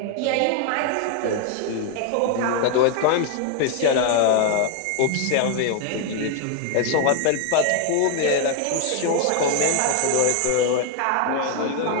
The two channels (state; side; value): different; both; correlation 0.00